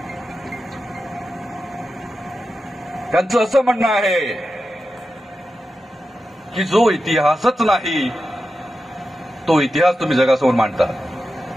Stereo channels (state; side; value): normal; both; correlation 0.91